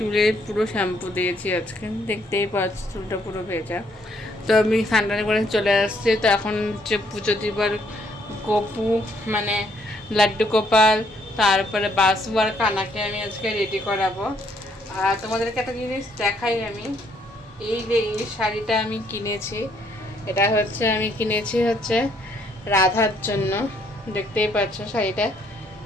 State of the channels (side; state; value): both; normal; correlation 0.69